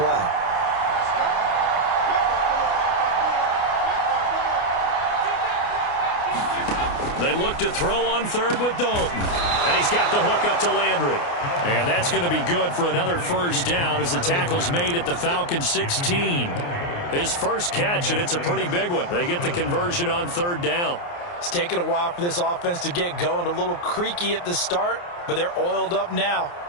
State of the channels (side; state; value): right; late; 29 ms